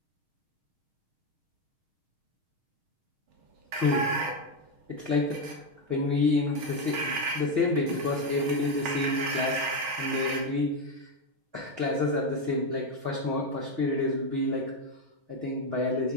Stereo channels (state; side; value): late; left; 6.4 ms